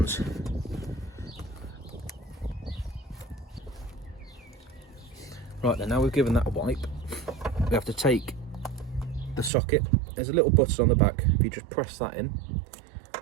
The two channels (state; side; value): drops out; left; at 9.5 s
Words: Right then, now we've given that a wipe, we have to take the socket. There's a little button on the back. If you just press that in,